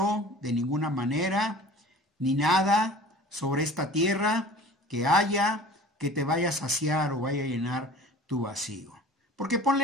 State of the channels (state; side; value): normal; both; correlation 0.44